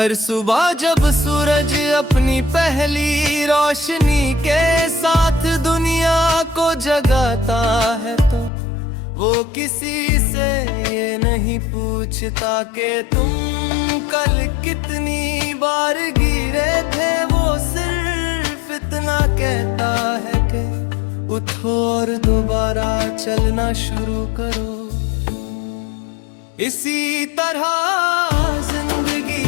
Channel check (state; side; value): drops out; right; at 8.5 s